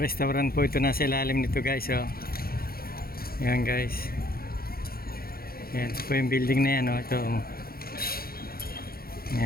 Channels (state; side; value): late; right; 0.44 ms